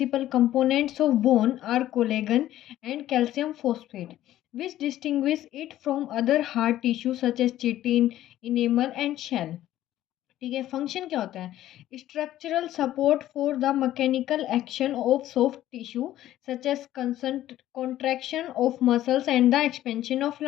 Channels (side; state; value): right; quieter; 13.5 dB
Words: components of bone are collagen and calcium phosphate which distinguish it from other hard tissue such as chitin, enamel and shell। ठीक है। Function क्या होता है? Structural support for the mechanical action of soft tissue such as contraction of muscles and the expansion of